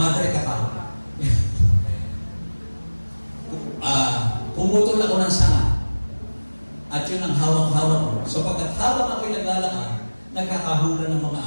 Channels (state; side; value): inverted; both; correlation -1.00